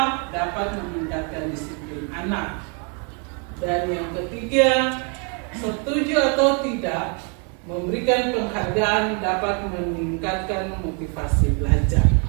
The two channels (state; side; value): quieter; left; 37.3 dB